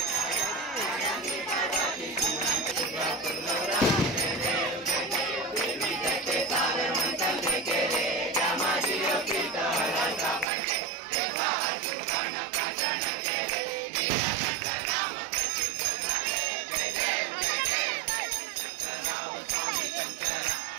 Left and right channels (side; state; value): left; drops out; at 10.5 s